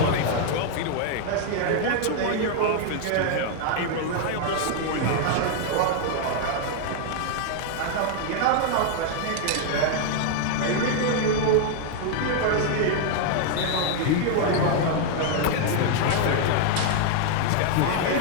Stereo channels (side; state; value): both; different; correlation 0.00